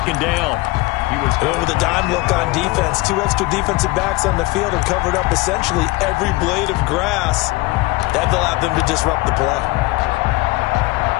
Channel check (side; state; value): right; quieter; 21.6 dB